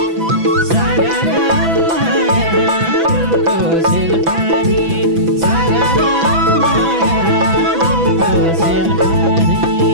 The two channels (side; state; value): left; late; 6.0 ms